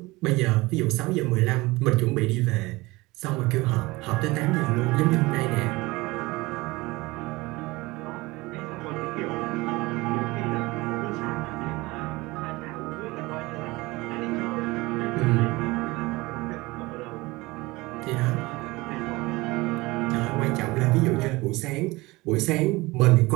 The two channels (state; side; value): quieter; left; 21.8 dB